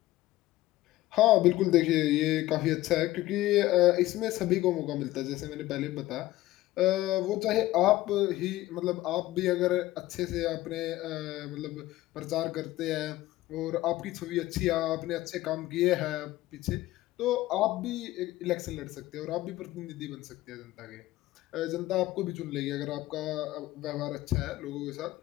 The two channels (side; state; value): right; quieter; 16.6 dB